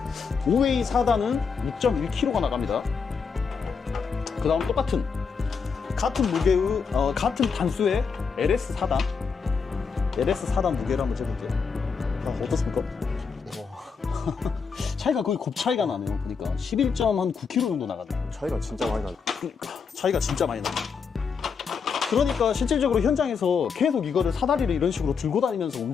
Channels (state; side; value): quieter; right; 5.7 dB